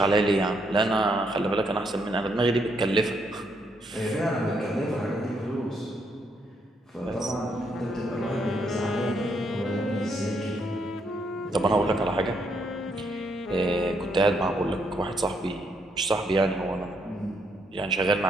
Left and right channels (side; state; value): both; normal; correlation 0.74